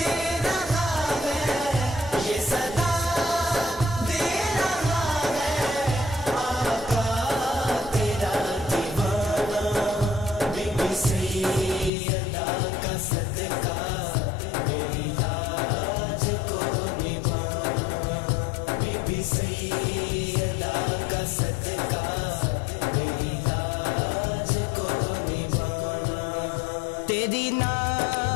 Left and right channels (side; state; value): right; drops out; at 11.9 s